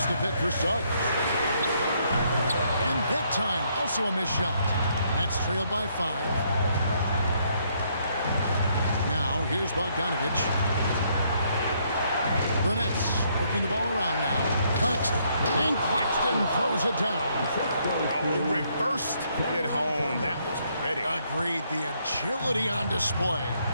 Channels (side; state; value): both; inverted; correlation -0.71